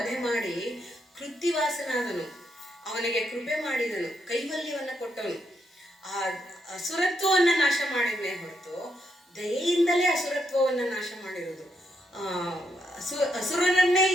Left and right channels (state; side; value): normal; both; correlation 0.79